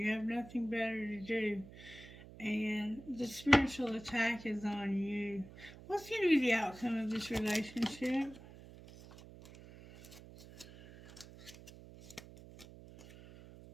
have nothing better to do. And the spiritual attack is on you. What's going to be the outcome of this relationship?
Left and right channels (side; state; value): right; noise; hum, 17 dB below the sound